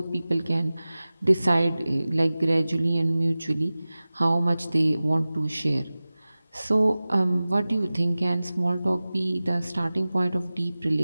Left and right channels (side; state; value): both; inverted; correlation -0.97